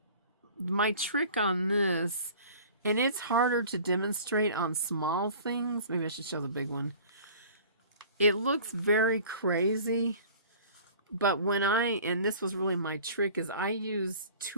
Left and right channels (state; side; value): inverted; both; correlation -0.45